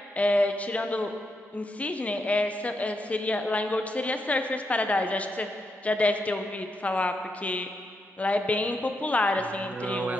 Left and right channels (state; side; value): normal; both; correlation 0.82